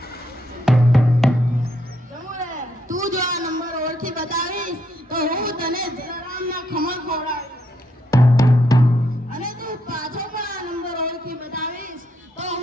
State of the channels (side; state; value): both; normal; correlation 0.75